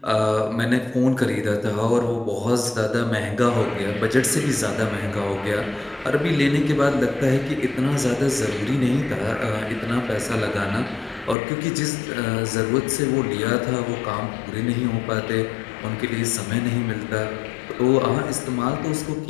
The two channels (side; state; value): right; drops out; at 11.4 s